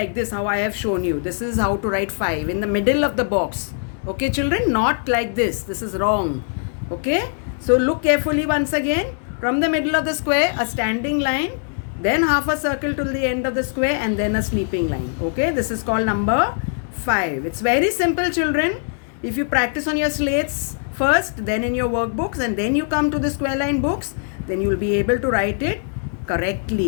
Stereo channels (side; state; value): right; silent; 65 dB below the other